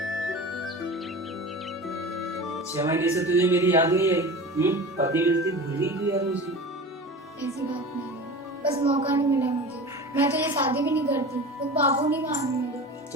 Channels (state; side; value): normal; both; correlation 0.34